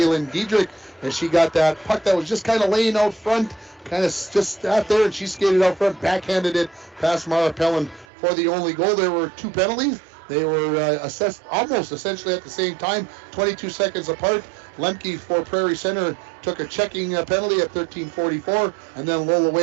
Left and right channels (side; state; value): left; drops out; at 8.1 s